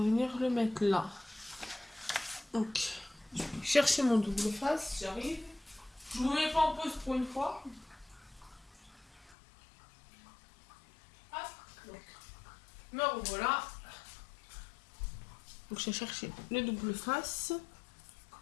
le mettre là. Donc, je vais chercher mon double face, j'arrive. Je vous mets pas en pause pour une fois. Hop, donc, me revoilà. Donc, j'ai cherché le double face.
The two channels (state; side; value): drops out; right; at 9.3 s